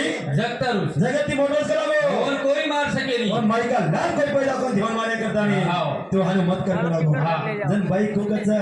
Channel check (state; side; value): identical; both; correlation 1.00